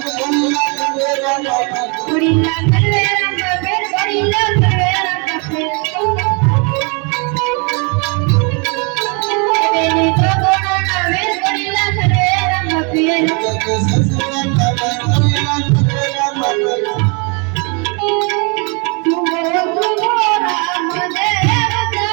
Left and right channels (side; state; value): left; quieter; 33.8 dB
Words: Gorilla Calvera Mape, Gorilla Calvera Mape. Benito Corona ver Gorilla Calvera Mape.